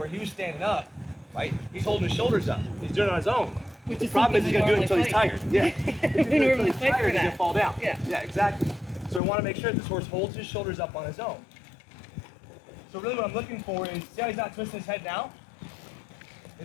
he was standing up. Right? He's holding his shoulders up. He's doing it on his own. Which The problem is he's going to do it until he's tired. Yeah. We normally fight for He's going that. to fall down. Yeah. Exactly. So I want to make sure that this horse holds his shoulders up on his own. So really what I'm looking for is, see how he's not twisting his head now?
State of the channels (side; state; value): right; drops out; at 9.2 s